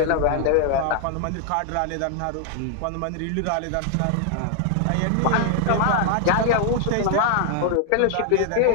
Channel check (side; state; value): both; different; correlation 0.00